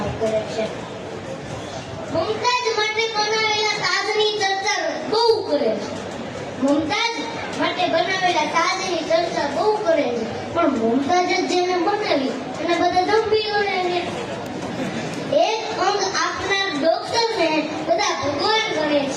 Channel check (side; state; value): both; identical; correlation 1.00